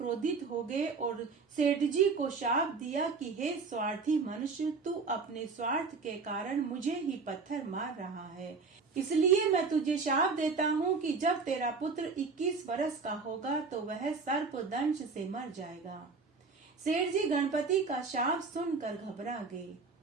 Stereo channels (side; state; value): left; quieter; 4.6 dB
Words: हो गए और सेठ जी को शाप दिया कि हे स्वार्थी मनुष्य, तू अपने स्वार्थ के कारण मुझे ही पत्थर मार रहा है। इसलिए मैं तुझे शाप देता हूँ कि जब तेरा पुत्र 21 वर्ष का होगा तो वह सर्प दंश से मर जाएगा। सेठ जी गणपति का शाप सुनकर घबरा गए।